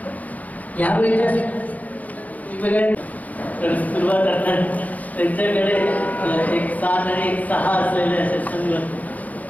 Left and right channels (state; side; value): late; right; 0.077 ms